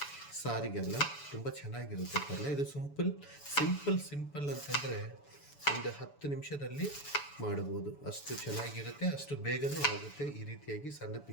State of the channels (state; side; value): late; right; 7.0 ms